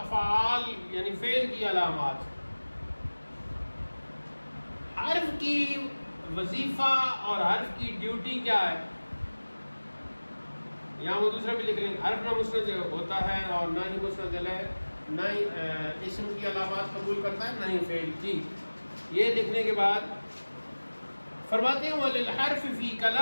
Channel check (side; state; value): both; inverted; correlation -1.00